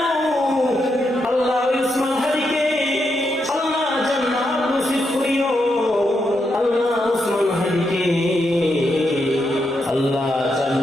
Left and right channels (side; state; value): both; normal; correlation 0.82